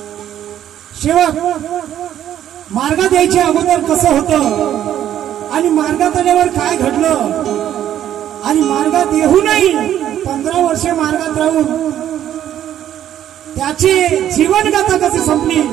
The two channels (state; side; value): quieter; left; 11.1 dB